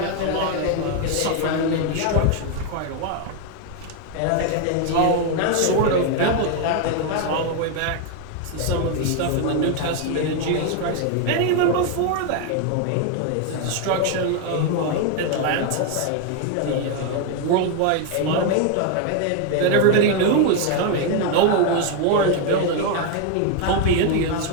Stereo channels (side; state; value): both; different; correlation 0.01